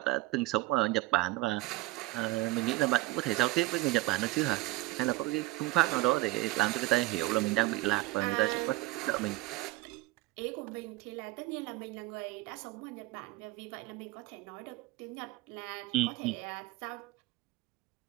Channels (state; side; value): quieter; left; 20.0 dB